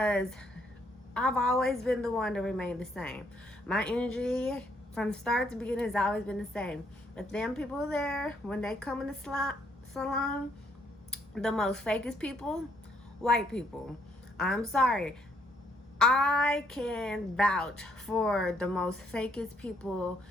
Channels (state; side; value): normal; both; correlation 0.70